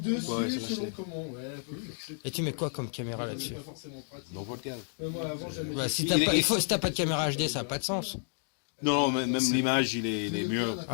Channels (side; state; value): right; silent; 57 dB below the other